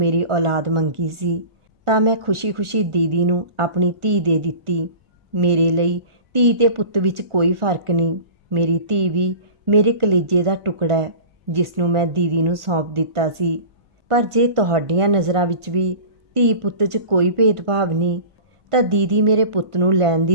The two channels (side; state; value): left; late; 1.4 ms